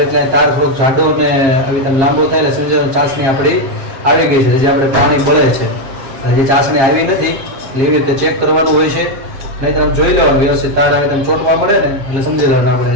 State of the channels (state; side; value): late; left; 7.5 ms